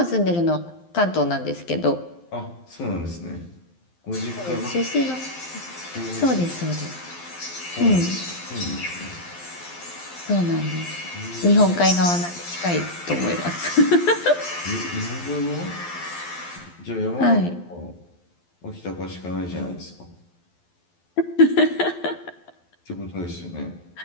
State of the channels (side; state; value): right; late; 12 ms